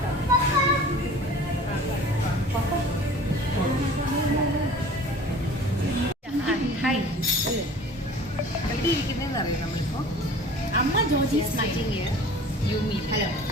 Hi, എവിടെ ഇരിക്കുന്നതെന്ന് അറിയാം നമ്മളിപ്പോൾ. അമ്മ ജോജി സ്മൈലിംഗ് യൂമി. Hello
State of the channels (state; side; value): normal; both; correlation 0.44